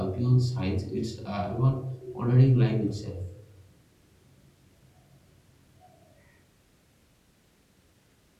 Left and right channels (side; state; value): both; identical; correlation 1.00